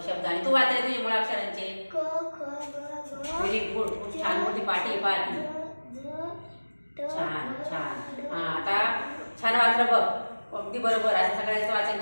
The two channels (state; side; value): inverted; both; correlation -1.00